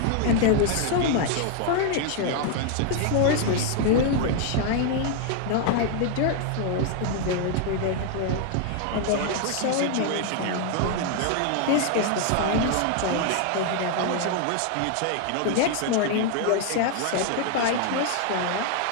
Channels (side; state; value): both; different; correlation 0.00